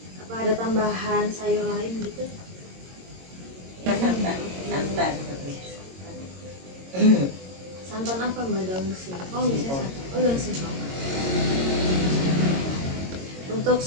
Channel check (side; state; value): left; late; 22 ms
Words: Apa ada tambahan sayur lain gitu? Ya, santan. Santan apa mbak, daun singkong biasanya santan? Oh daun singkong. Untuk